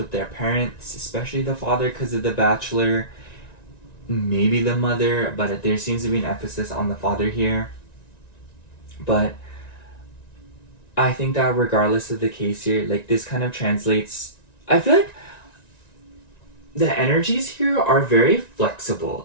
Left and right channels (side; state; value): right; late; 1.9 ms